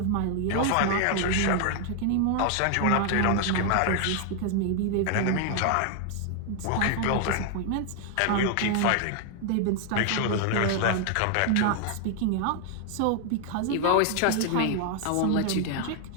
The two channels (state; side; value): different; both; correlation 0.00